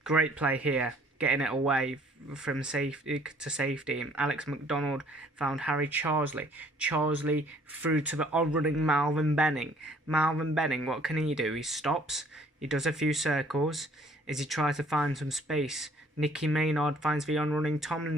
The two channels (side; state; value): both; normal; correlation 0.58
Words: Great play here, getting it away from safety to safety. Alex McDonald found Harry Charsley. Charsley through to the on-running Malvin Benning. Malvin Benning, what can he do? He stops. He does a few circles as he tries to find some space. Nicky Maynard finds the on-running